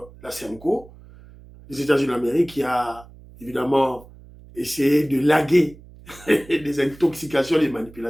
la SEMCO, les États-Unis d'Amérique qui a évidemment essayé de laguer des intoxications, des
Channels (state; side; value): noise; right; hum, 21 dB below the sound